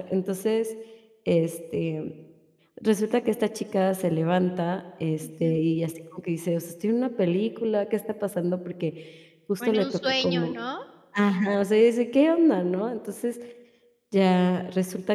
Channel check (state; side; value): identical; both; correlation 1.00